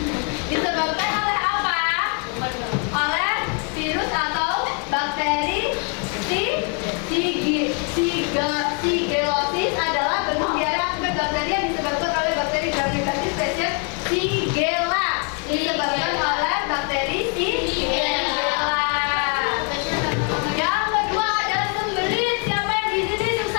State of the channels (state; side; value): quieter; right; 35.6 dB